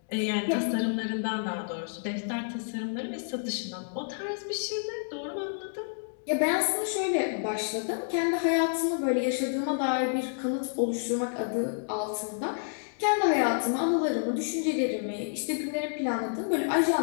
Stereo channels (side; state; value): right; silent; digital silence